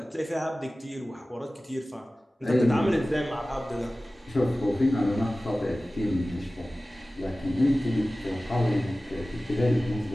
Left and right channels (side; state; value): both; normal; correlation 0.97